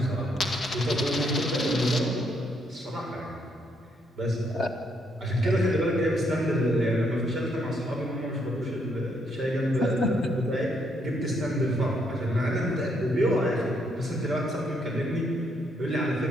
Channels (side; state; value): both; normal; correlation 0.73